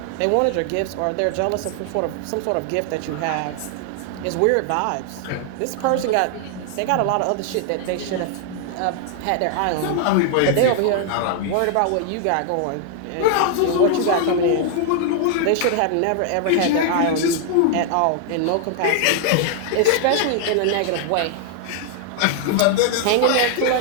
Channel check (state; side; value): different; both; correlation 0.00